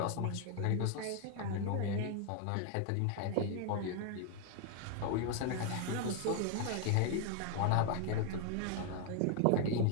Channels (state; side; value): different; both; correlation 0.00